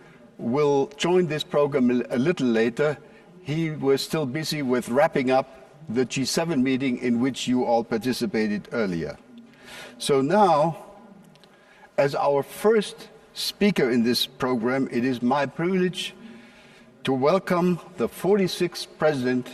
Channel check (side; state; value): both; identical; correlation 1.00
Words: will join this program a little later. He was still busy with wrapping up the G7 meeting in which you all participated earlier. So now, as our first speaker in this program, it is my privilege to welcome the 46th